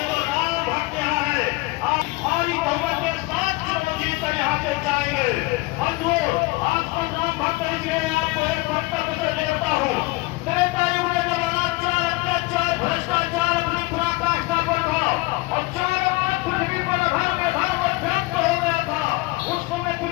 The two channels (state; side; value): quieter; right; 23.0 dB